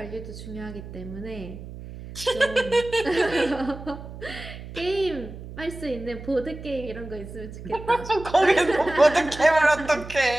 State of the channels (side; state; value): right; noise; hum, 13 dB below the sound